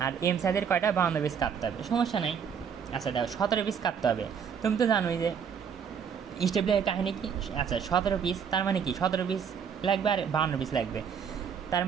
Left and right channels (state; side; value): quieter; left; 7.2 dB